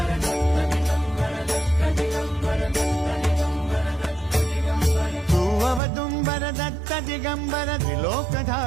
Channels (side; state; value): left; drops out; at 5.8 s